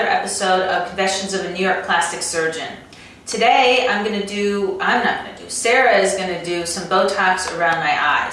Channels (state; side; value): identical; both; correlation 1.00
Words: episode of Confessions of a New York Plastic Surgeon. Today, Sarah is going to do some Botox around my